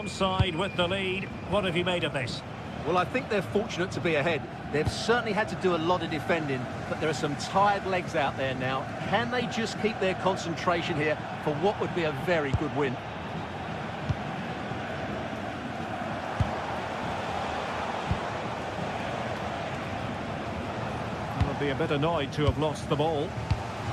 side with the lead. What have you made of this? Well, I think they're fortunate to be ahead. They've certainly had to do a lot of defending, but there are some tired legs out there now. Can they just keep their concentration here for what would be a very good win? They'll be a bit annoyed to have lost the ball.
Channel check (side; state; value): both; identical; correlation 1.00